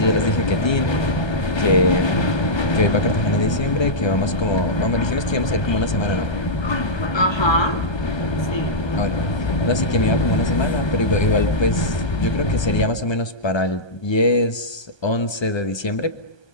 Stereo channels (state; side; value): late; right; 1.3 ms